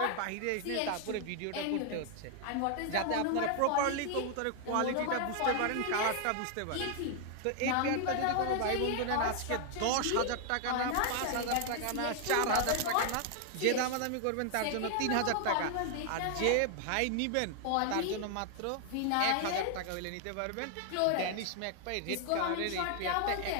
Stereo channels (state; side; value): different; both; correlation 0.00